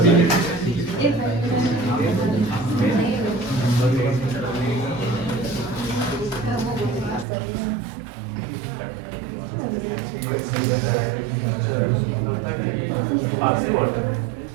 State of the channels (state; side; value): drops out; left; at 7.2 s